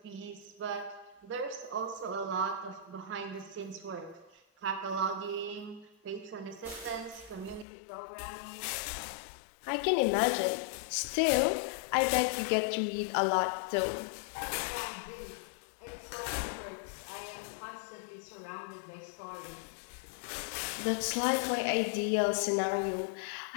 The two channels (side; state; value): right; drops out; at 7.7 s